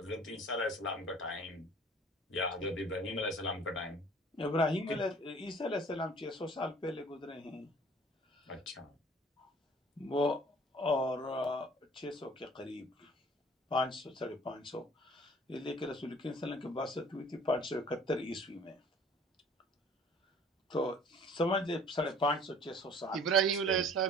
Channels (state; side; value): normal; both; correlation 0.51